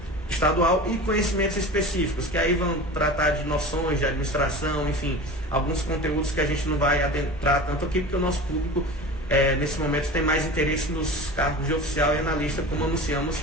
estadual e conhecimentos específicos, que aí vão tratar de noções de administração, enfim, alguns conteúdos que a gente não vai adentrar tanto aqui, porque o nosso público nesse momento tem mais interesse nos cargos de oficial e analista, como anunciamos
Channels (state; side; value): normal; both; correlation 0.34